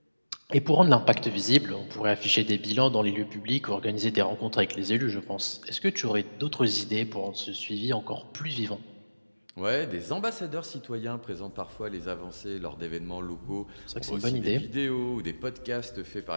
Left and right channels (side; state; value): both; inverted; correlation -1.00